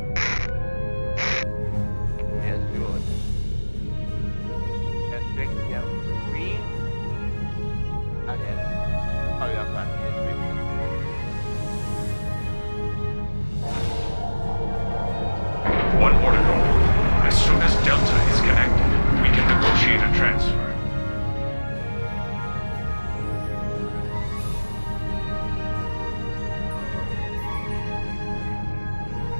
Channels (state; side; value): inverted; both; correlation -1.00